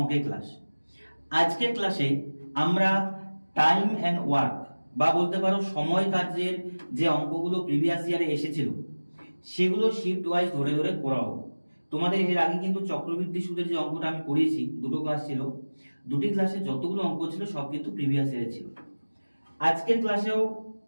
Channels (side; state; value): both; inverted; correlation -1.00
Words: ক্লাস। আজকের ক্লাসে আমরা টাইম অ্যান্ড ওয়ার্ক বা বলতে পারো সময় কার্যের যে অঙ্কগুলো প্রিভিয়াস ইয়ারে এসেছিল সেগুলো শিফট ওয়াইজ ধরে ধরে করাবো। তোমাদের এর আগে কিন্তু চক্রবৃদ্ধি সুদের যে অঙ্কটা আমি করিয়েছি, দুটো ক্লাস ছিল, দুটি ক্লাসে যতগুলো অঙ্ক ছিল সব কিন্তু প্রিভিয়াস ইয়ারে ছিল। আজকের ক্লাসেও